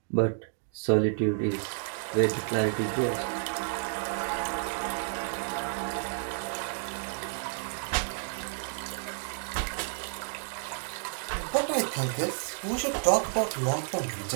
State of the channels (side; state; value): left; silent; digital silence